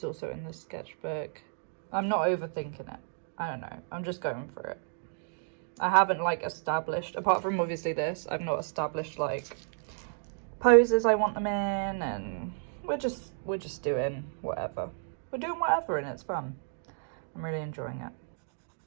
also in the sketchbook. I'm not overthinking it. I don't know. I'm just going for it. I haven't like established, apart from obviously this, I've not established like poses I want them in, and we're just doing whatever. We're doing whatever and it's fun. I'm really enjoying it.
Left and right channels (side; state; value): left; silent; digital silence